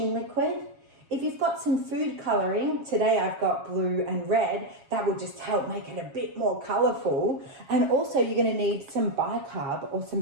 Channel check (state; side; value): late; left; 7.3 ms